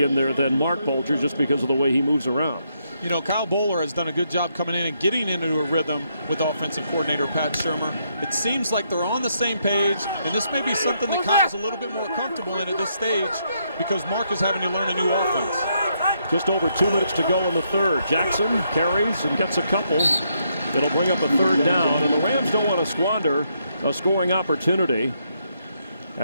there than Mark Bulger, just because of the way he moves around. You know, Kyle Bowler has done a good job coming in and getting into a rhythm with offensive coordinator Pat Shurmur. It seems like they're on the same page, and this may be something that Kyle's a little bit more comfortable in at this stage because Mark is having to learn a new offense. Just over 2 minutes to go in the third. Jackson carries and gets a couple. It'll bring up a third down, and the Rams don't want to squander a scoring opportunity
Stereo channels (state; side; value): inverted; both; correlation -0.76